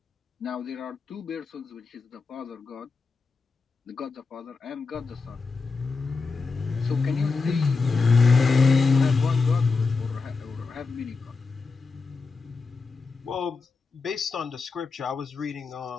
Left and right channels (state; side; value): quieter; right; 4.4 dB